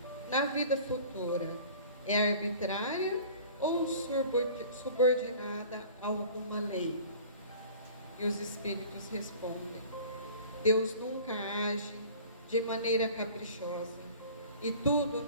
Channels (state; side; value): inverted; both; correlation -0.45